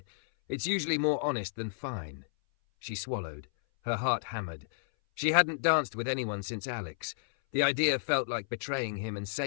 "It's usually more honest than fine." She swallowed. Her heart hammered. She hadn't danced with anyone since Alex. The idea felt like betraying him and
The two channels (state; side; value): silent; right; 57 dB below the other